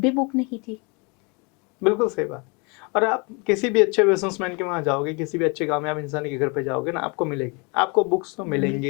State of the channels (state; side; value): quieter; right; 31.1 dB